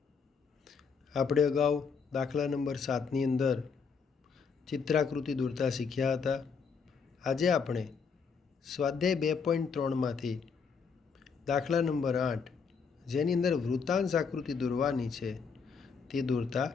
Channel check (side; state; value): right; quieter; 5.7 dB